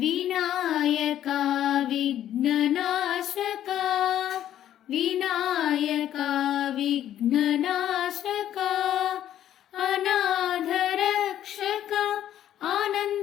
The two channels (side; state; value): right; quieter; 11.5 dB